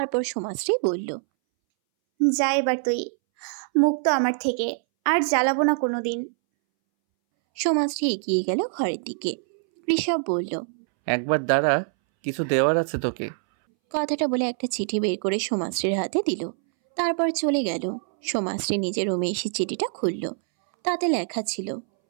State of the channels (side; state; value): left; silent; 62 dB below the other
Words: সোমাশ্রী বলল, যা এবার তুই, মুক্ত আমার থেকে, আর জ্বালাবো না কোনোদিন। সোমাশ্রী এগিয়ে গেল ঘরের দিকে। ঋষভ বলল, একবার দাঁড়া, কিছু দেওয়ার আছে তোকে। কথাটা বলে একটা চিঠি বের করে সোমাশ্রীর হাতে দিল। তারপর চলে গেল। সোমাশ্রী নিজের রুমে এসে চিঠিটা খুলল। তাতে লেখা ছিল,